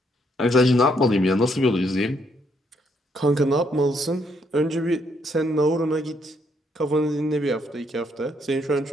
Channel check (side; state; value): both; normal; correlation 0.73